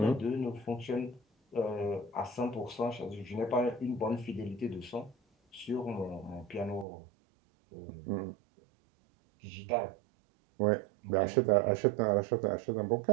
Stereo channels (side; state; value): left; drops out; at 6.9 s